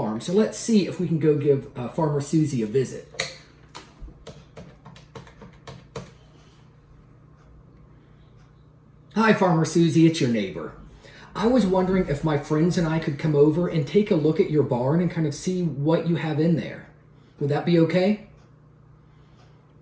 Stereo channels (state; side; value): identical; both; correlation 1.00